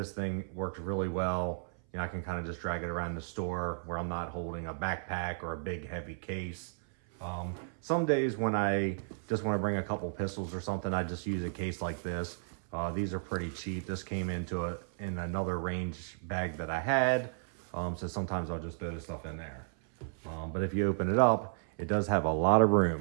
thing works really well. I can kind of just drag it around the store where I'm not holding a backpack or a big heavy case. Some days when I just want to bring a couple pistols or something, I just use a case like this. These are pretty cheap. This came in another range bag that I had. So sometimes I'll just throw the stuff in there. But if you open it up, it does have a lot of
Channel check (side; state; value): left; silent; 55 dB below the other